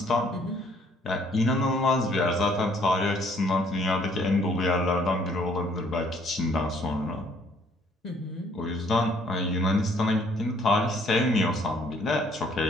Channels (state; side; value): normal; both; correlation 0.62